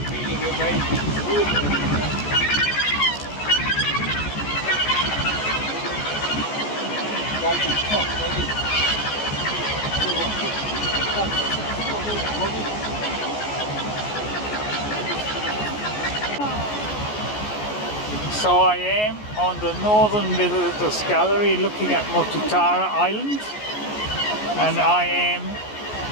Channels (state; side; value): late; right; 14 ms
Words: So I am on the northern visitors gallery looking at Motutara Island, and I am